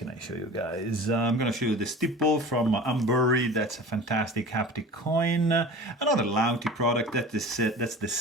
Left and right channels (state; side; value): normal; both; correlation 0.38